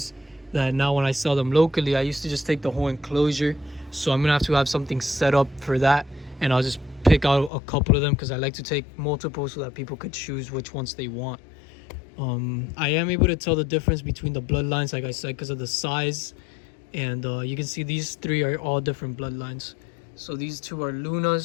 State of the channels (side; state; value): right; drops out; at 7.5 s